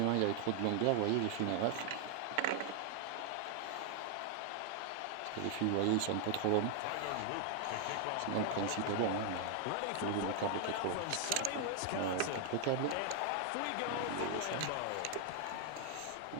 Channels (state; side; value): different; both; correlation 0.00